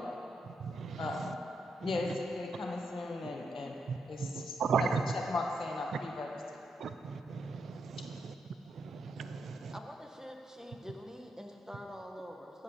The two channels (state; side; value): normal; both; correlation 0.81